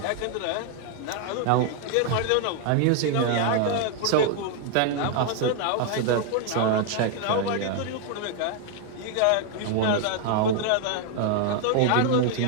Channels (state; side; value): different; both; correlation 0.00